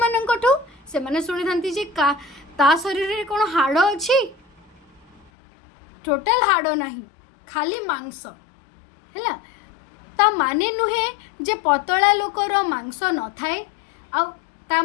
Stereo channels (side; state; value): right; drops out; at 5.2 s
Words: माननकठू से माने सुनी थांती जे का ता शरीर रे कोन हाड़ अछि टोटल हाड़ नहीं खाली मांस हैला ता माने नुहे जे पतला लोकर मांस न थाए आ ता